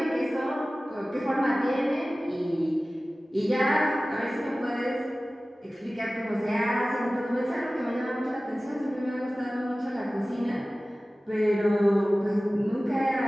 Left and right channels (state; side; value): normal; both; correlation 0.97